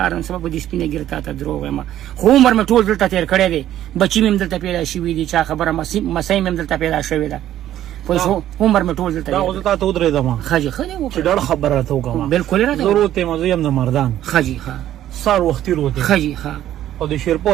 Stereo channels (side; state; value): left; quieter; 12.2 dB